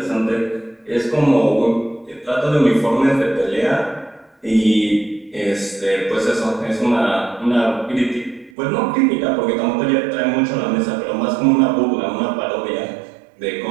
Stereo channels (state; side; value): drops out; left; at 8.5 s